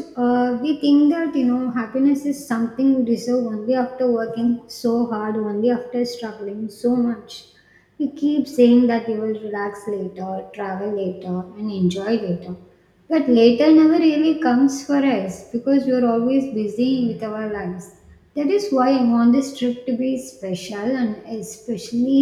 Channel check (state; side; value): identical; both; correlation 1.00